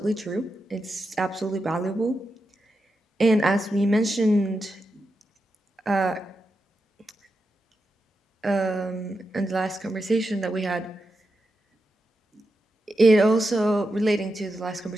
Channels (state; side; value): normal; both; correlation 0.88